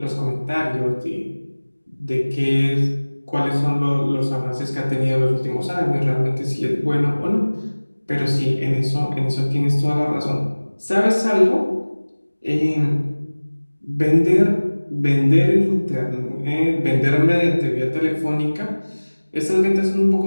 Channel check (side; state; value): both; inverted; correlation -1.00